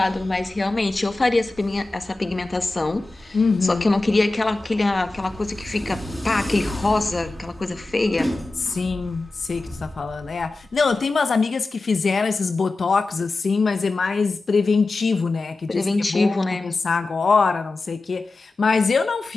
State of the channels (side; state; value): right; quieter; 3.3 dB